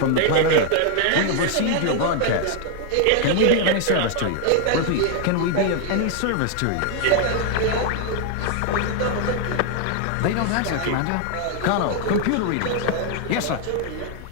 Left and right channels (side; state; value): both; different; correlation 0.00